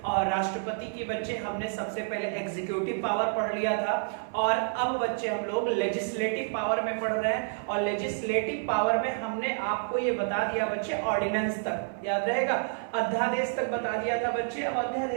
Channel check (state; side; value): silent; left; digital silence